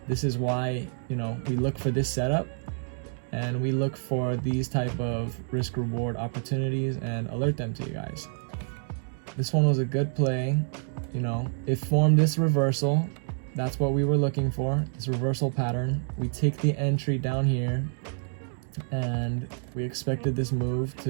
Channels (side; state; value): left; silent; 59 dB below the other